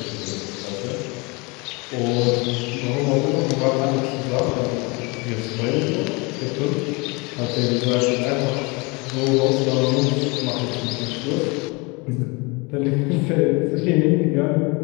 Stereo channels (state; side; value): quieter; right; 28.0 dB